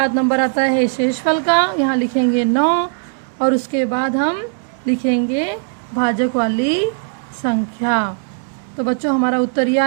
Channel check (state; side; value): silent; left; 67 dB below the other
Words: नंबर आता है शेषफल का, यहाँ लिखेंगे 9 और उसके बाद हम लिखेंगे भाजक वाली संख्या। तो बच्चों हमारा उत्तर ये